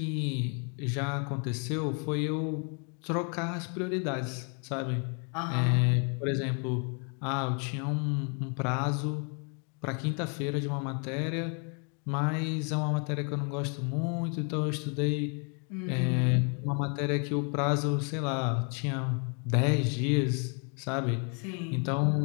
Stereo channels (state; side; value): quieter; right; 39.0 dB